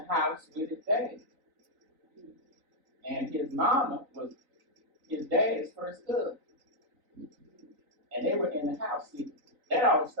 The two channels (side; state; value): left; late; 3.9 ms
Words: house with his dad. And his mama was his dad's first cousin. And they were in the house. See, that all